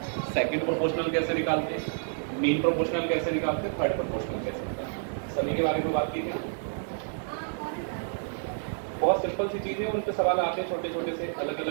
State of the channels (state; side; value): silent; left; digital silence